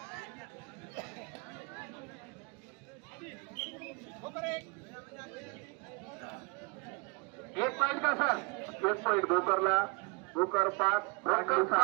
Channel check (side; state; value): left; quieter; 31.6 dB